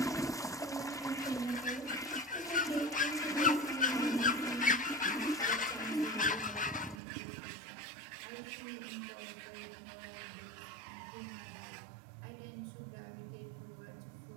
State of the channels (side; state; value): left; drops out; at 7.0 s